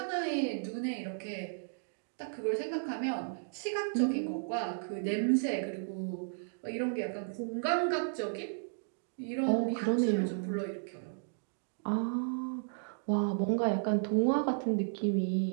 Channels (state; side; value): silent; left; digital silence